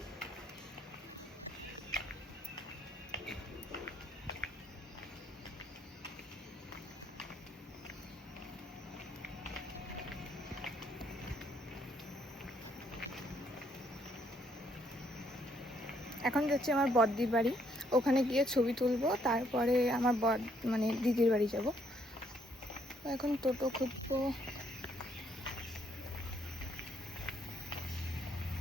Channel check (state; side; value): normal; both; correlation 0.70